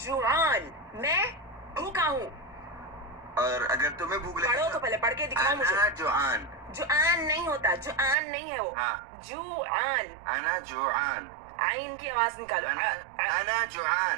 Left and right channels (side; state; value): left; drops out; at 8.2 s